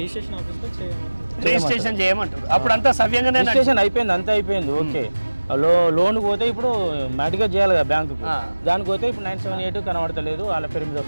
రిజిస్ట్రేషన్ చేయమంటారు. అప్పుడు అంతా సవ్యంగా రిజిస్ట్రేషన్ అయిపోయింది, అంతా అయిపోయింది. ఓకే, లోన్కి పోతే ఇప్పుడు మ్యాటిగా చేయాలి కదా బ్యాంకుకు. దానికి పోతే ఇప్పుడు 978 కనబడతలేదు, వాళ్ళ పేరు మీద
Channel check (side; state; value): both; inverted; correlation -1.00